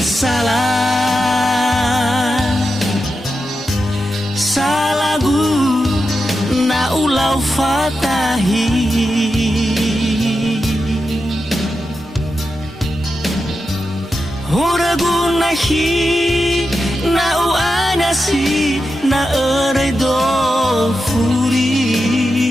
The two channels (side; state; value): both; normal; correlation 0.89